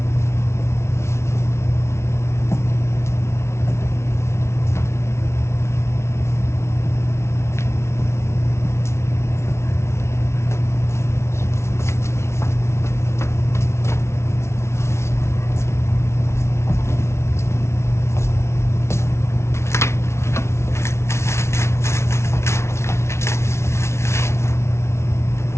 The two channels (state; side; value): late; right; 0.13 ms